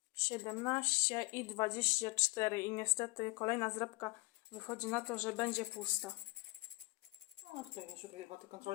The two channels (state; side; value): quieter; right; 24.7 dB